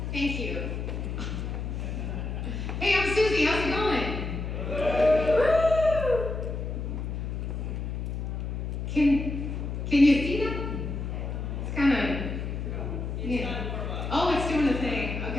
Thank you. Hey, I'm Susie. How's it going? Woo! Can you see that? It's kind of. Yeah. Oh, it's doing the thing.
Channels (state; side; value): noise; left; hum, 4 dB below the sound